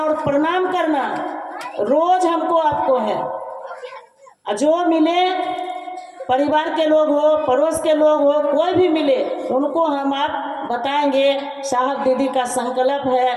और प्रणाम करना रोज हमको आपको है। जो मिले, परिवार के लोग हो, पड़ोस के लोग हो, कोई भी मिले, उनको हम आप बताएंगे साहब दीदी का संकल्प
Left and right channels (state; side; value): identical; both; correlation 1.00